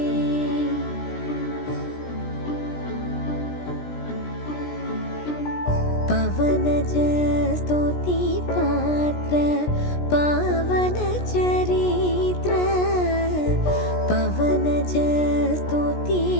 पवनज स्तुति पात्र पावन चरित्र पवनज स्तुति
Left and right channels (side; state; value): right; late; 17 ms